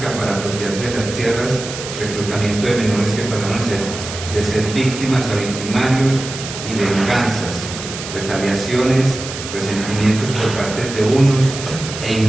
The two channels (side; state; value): right; noise; hiss, 9 dB below the sound